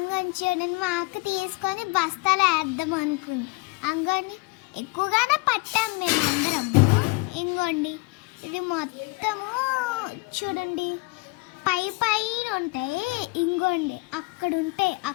చూడండి మా అక్క తీసుకొని బస్తాలు వేద్దాం అనుకుంది. అంగోండి ఎక్కువగానే పట్టాం మేమందరము. ఇంకోండి ఇది మొత్తము చూడండి పైన ఉంటాయి. ఇంకోండి అక్కడ ఉంటాయి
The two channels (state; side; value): quieter; right; 26.2 dB